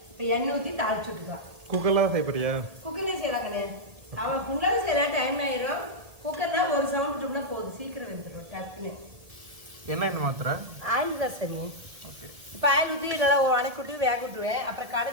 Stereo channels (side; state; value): left; late; 1.7 ms